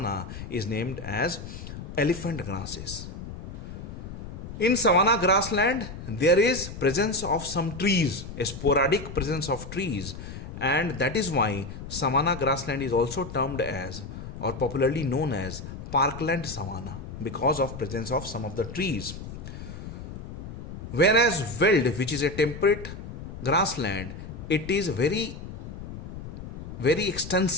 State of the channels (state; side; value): noise; left; rumble, 10 dB below the sound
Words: is named as elephant grasses. In savanna grassland, there is presence of some trees, a sporadic presence of trees, and that is why savanna grassland is also termed as, or popularly known as, parkland savanna, because of presence of some of the trees. Whereas veld, which is a temperate grassland, it is very